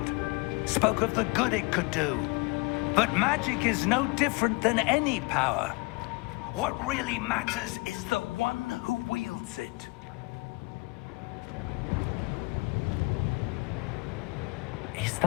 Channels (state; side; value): quieter; right; 27.3 dB